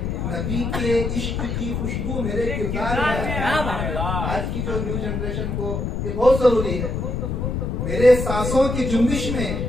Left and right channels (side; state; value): left; noise; rumble, 2 dB below the sound